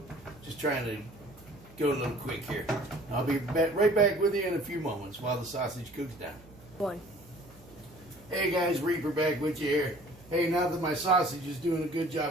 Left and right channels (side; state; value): right; noise; hum, 23 dB below the sound